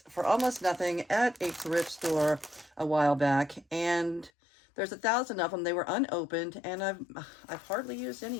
for almost nothing at a thrift store a while back, and there's 1,000 of them. They were unopened, and I've hardly used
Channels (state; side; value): drops out; right; at 4.3 s